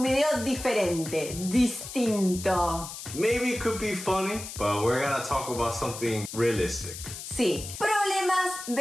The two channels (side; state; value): left; noise; hiss, 10 dB below the sound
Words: video diferente, distinto. Maybe it could be funny, but we're gonna talk about something realistic. Sí, problemas